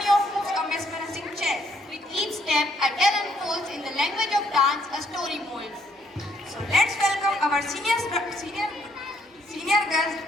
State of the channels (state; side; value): normal; both; correlation 0.70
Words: of moves a mesmerizing chant. With each step, a talent unfolds in the language of dance, a story molds. So let's welcome our senior girls